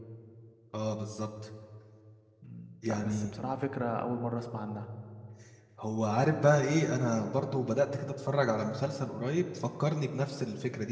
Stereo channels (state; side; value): identical; both; correlation 1.00